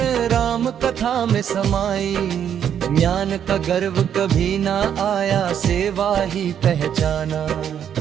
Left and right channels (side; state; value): left; quieter; 9.0 dB